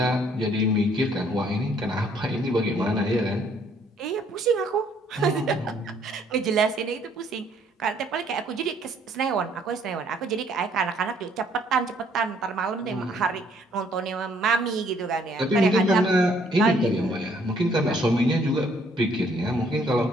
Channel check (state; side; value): normal; both; correlation 0.64